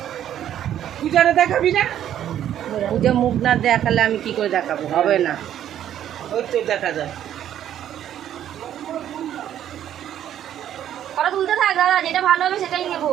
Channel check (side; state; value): left; quieter; 10.8 dB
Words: পূজারে দেখাবি না? পূজা মুখ না দেখালে আমি কি করে দেখাবো, হবে না। ওই তো দেখা যায়। কটা তুলতে থাক দাদা, যেটা ভালো হবে সেটাই নেবো।